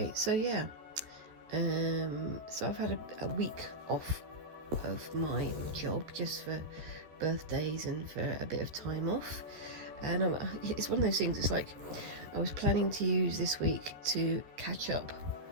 so yeah, so I've had a week off of my job just for birthdays and for a bit of time off, and it's one of those things. It's like I was planning to use this week to catch up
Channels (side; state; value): left; late; 13 ms